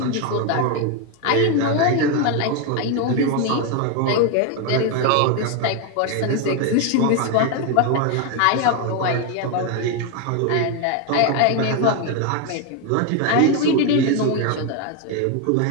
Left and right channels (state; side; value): different; both; correlation 0.02